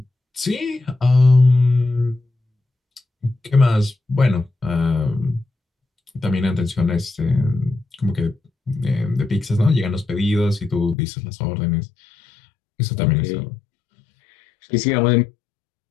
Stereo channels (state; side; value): drops out; right; at 11.0 s